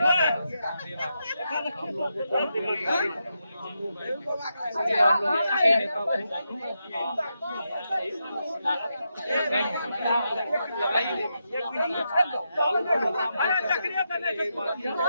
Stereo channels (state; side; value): inverted; both; correlation -0.85